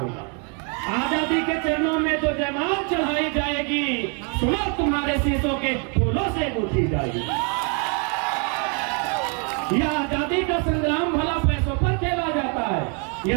आजादी के चरणों में जो जयमाल चढ़ाई जाएगी, सुनो तुम्हारे शीशों के फूलों से गूंथी जाएगी। यह आजादी का संग्राम भला पैसों पर खेला जाता है,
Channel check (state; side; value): quieter; left; 37.6 dB